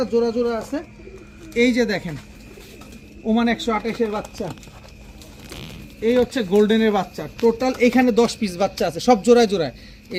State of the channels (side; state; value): both; identical; correlation 1.00